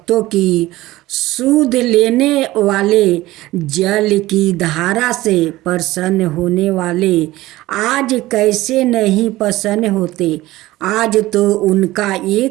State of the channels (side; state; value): left; quieter; 17.5 dB